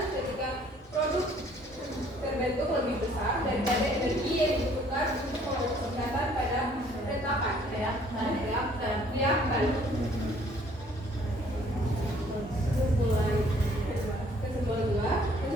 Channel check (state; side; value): normal; both; correlation 0.59